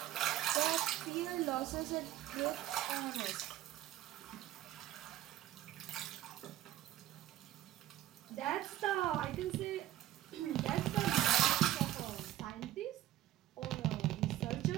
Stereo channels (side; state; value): left; quieter; 13.4 dB